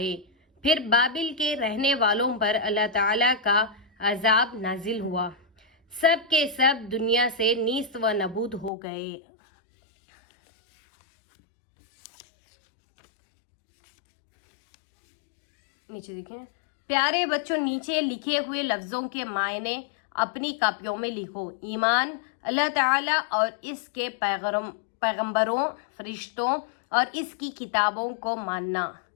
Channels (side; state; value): right; drops out; at 8.7 s